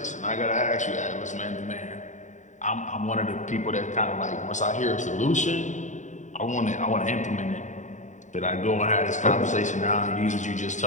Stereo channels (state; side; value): late; right; 0.35 ms